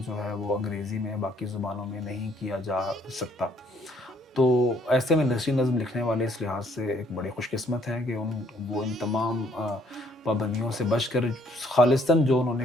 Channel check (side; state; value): both; normal; correlation 0.65